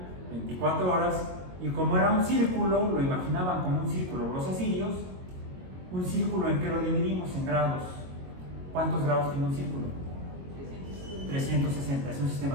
24 horas, y como era un círculo, lo imaginaban como un círculo los asirios, un círculo en que lo dividimos en grados. ¿Cuántos grados tiene un círculo? 360, es un sistema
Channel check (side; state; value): left; late; 22 ms